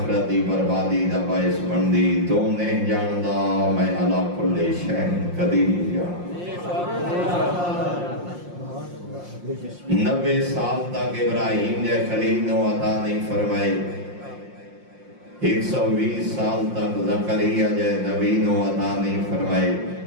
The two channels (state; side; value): late; left; 5.7 ms